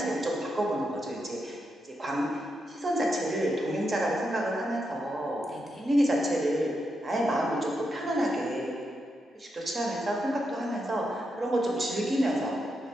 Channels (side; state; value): both; normal; correlation 0.84